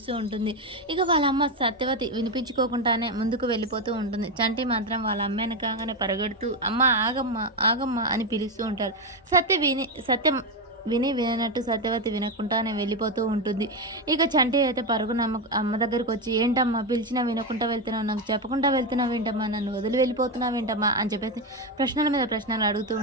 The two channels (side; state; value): both; normal; correlation 0.10